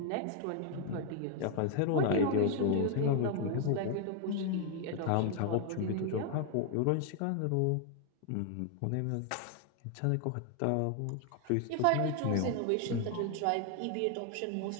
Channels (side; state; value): both; different; correlation 0.00